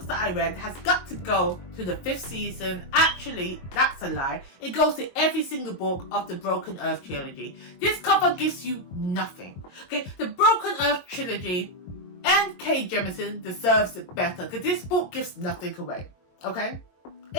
that I read has got to go to the 5th season. Actually, that's a lie. It goes to every single book of the Broken Earth trilogy. This cover gives you nothing. Okay, the Broken Earth trilogy and Kay Jemisin deserves it better because this book gives nothing away. Okay,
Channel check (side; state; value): right; late; 22 ms